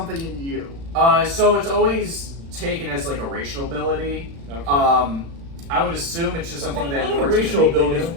in you? So it's always taken as like a racial ability. Okay. I would assume it's just something that the Nords racial can innately abilities do.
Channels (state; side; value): late; left; 36 ms